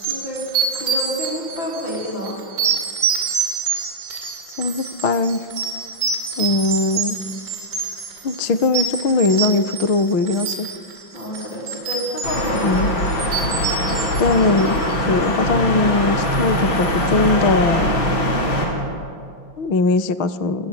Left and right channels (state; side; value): late; right; 5.7 ms